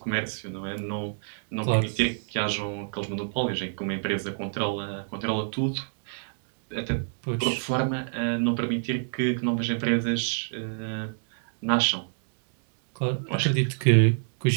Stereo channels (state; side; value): silent; left; digital silence